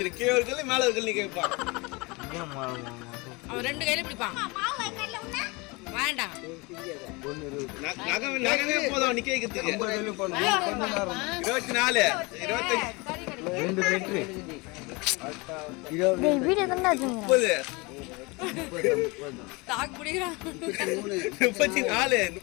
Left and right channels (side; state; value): right; quieter; 26.3 dB